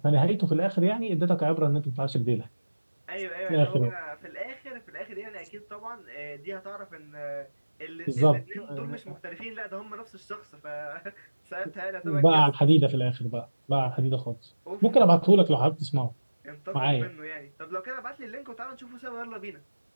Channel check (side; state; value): both; inverted; correlation -1.00